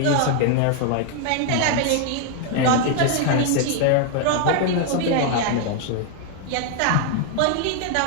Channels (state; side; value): different; both; correlation 0.00